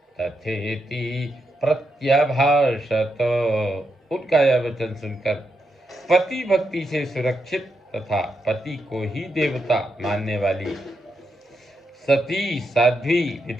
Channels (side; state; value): both; normal; correlation 0.83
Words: तथेति प्रत्यभाषत। उनका यह वचन सुनकर पति भक्ति से सुरक्षित तथा पति को ही देवता मानने वाली सती साध्वी